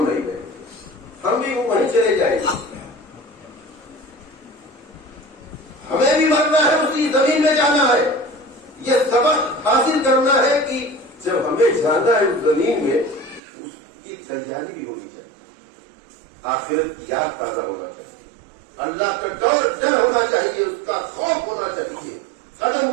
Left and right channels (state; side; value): drops out; left; at 13.4 s